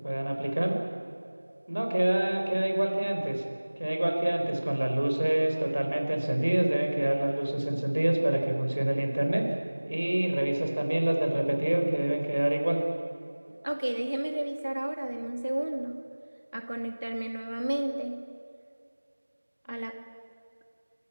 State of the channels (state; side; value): inverted; both; correlation -1.00